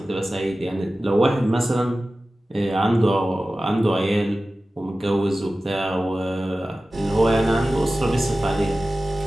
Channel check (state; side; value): normal; both; correlation 0.95